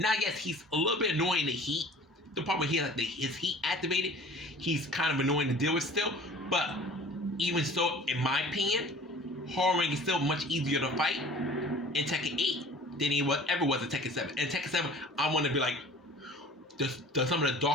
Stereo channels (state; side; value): normal; both; correlation 0.46